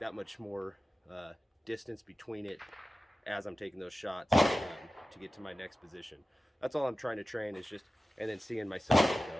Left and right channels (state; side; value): normal; both; correlation 0.95